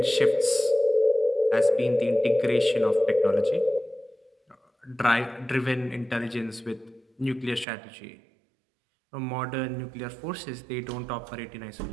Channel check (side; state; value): left; drops out; at 7.7 s